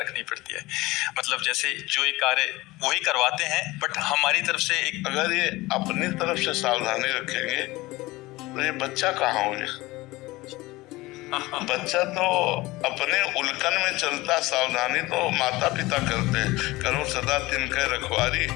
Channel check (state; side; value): quieter; right; 20.2 dB